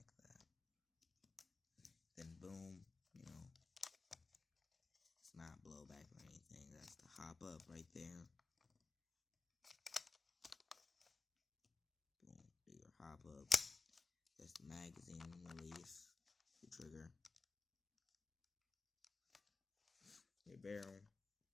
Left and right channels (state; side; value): quieter; right; 3.9 dB